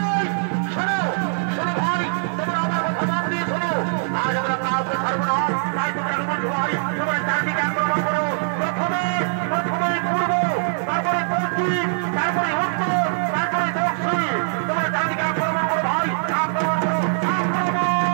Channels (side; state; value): left; silent; digital silence